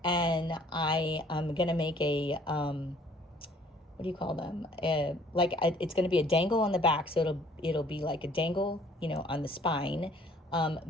And I am going to make a, what do you call them? It's going to be a dangle on the back. So it'll be like a dangle, on the spine.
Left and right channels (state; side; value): normal; both; correlation 0.57